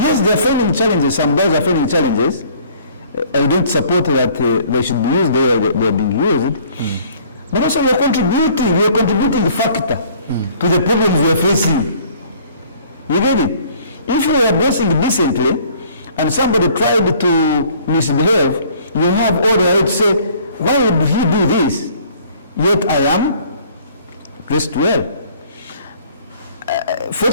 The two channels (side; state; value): both; inverted; correlation -0.55